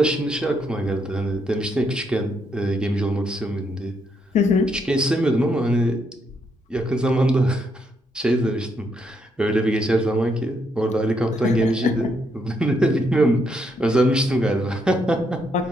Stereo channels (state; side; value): normal; both; correlation 0.76